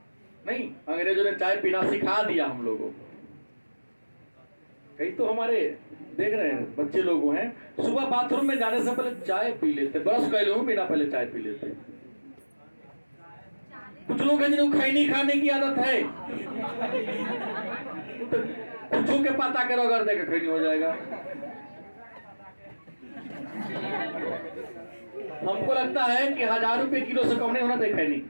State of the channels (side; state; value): both; inverted; correlation -1.00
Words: नहीं, अंग्रेजों ने चाय पीना सिखा दिया हम लोगों को। कई तो हमारे देख रहे हैं बच्चे लोग हैं, सुबह बाथरूम में जाने से पहले चाय पी लेते, ब्रश कर लो बिना पहले चाय पी लेते। कुछ लोग हैं जिनको खैनी खाने की आदत है, तो कुछ के पता करो अगर देखे खैनी हो जाएगा। हमको लगता है कि 1000 रुपए किलो से कम नहीं होना चाहिए खैनी।